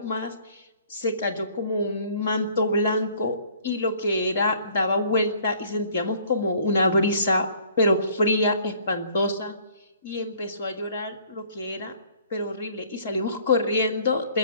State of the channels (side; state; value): both; inverted; correlation -0.56